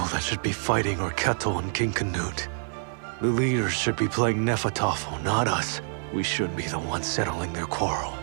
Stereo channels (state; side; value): silent; left; digital silence